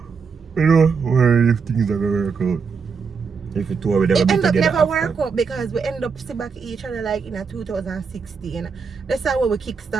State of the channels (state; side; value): quieter; left; 5.5 dB